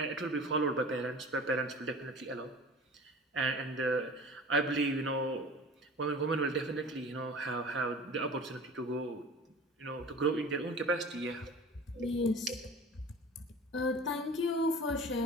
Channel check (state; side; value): normal; both; correlation 0.40